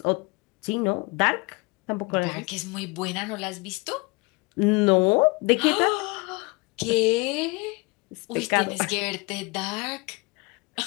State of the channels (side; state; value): right; quieter; 27.0 dB